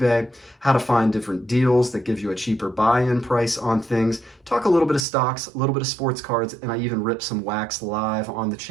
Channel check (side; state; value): left; drops out; at 5.1 s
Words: how to find different deals that give you a cheaper buy-in price on things, talk a little bit of stocks, a little bit of sports cards, and I even rip some wax live on the